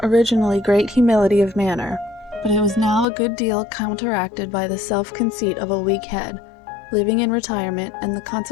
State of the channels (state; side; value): drops out; right; at 3.1 s